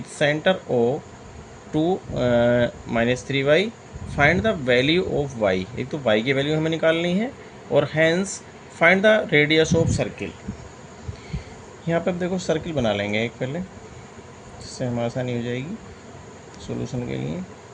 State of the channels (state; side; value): identical; both; correlation 1.00